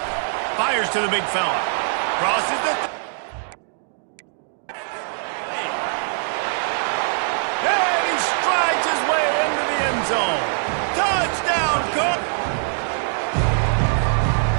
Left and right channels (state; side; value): silent; left; digital silence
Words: Fires to the big fella. Crosses the... And he strides his way into the end zone. Touchdown, Cook!